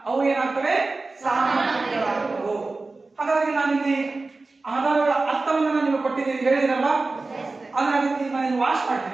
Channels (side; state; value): left; quieter; 3.5 dB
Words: ಅವು ಏನಾಗ್ತವೆ? ಸಾಮಗ್ರಿಗಳಾಗುತ್ತವೆ. ಹಾಗಾಗಿ ನಾನಿಲ್ಲಿ ಆಧಾರಗಳ ಅರ್ಥವನ್ನು ನೀವು ಕೊಟ್ಟಿದ್ದೀನಿ, ಹೇಳಿದಿರಲ್ಲ, ಅದನ್ನ ನಾನು ವಾಶ್